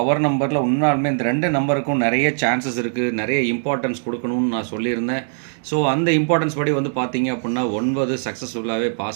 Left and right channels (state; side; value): silent; left; digital silence